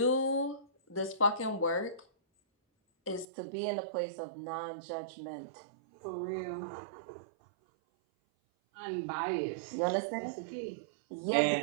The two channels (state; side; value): drops out; left; at 3.2 s